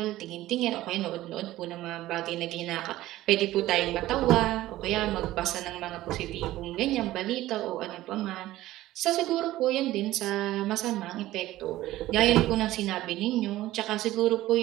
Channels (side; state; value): left; quieter; 15.7 dB